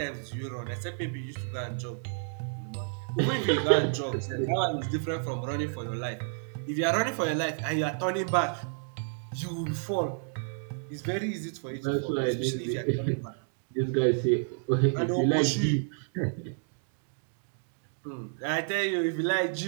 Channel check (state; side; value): silent; left; digital silence